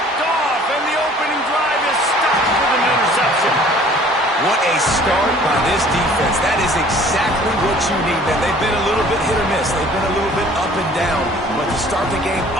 off, and the opening drive is stopped with an interception. What a start by this defense. That is exactly what you need, man. They've been a little bit hit or miss. They've been a little bit up and down. But to start the game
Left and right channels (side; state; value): both; normal; correlation 0.52